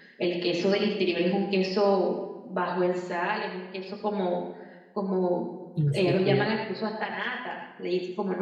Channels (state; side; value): identical; both; correlation 1.00